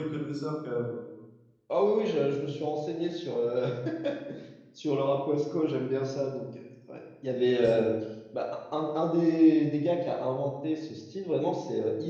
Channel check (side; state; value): both; identical; correlation 1.00